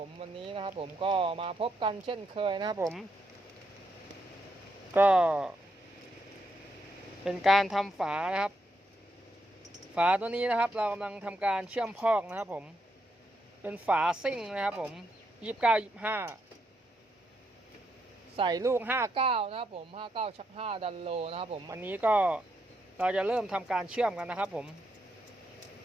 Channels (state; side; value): normal; both; correlation 0.79